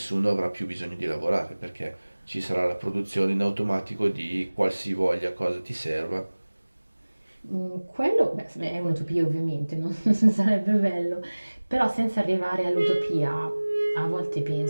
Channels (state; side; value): inverted; both; correlation -1.00